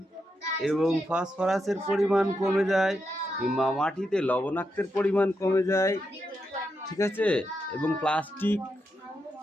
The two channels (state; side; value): normal; both; correlation 0.84